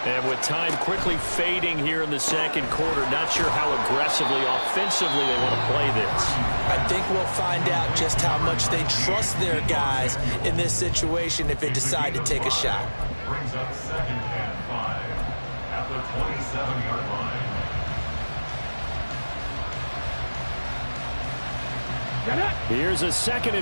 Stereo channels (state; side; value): inverted; both; correlation -1.00